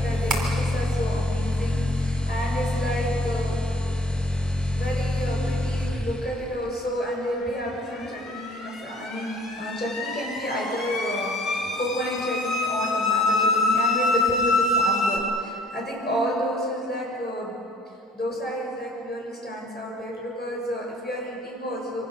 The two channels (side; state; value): both; normal; correlation 0.57